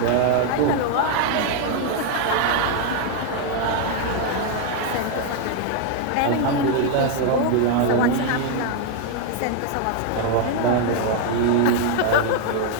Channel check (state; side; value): different; both; correlation 0.00